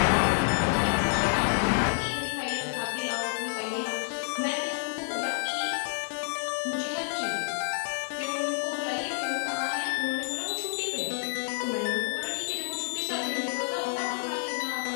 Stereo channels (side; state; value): right; silent; digital silence